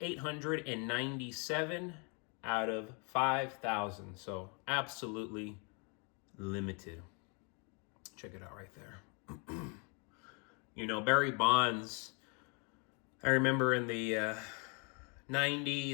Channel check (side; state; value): right; quieter; 34.9 dB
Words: out of 5,000. So absolutely limited. Check it out right there. Barry Bonds, I remember in the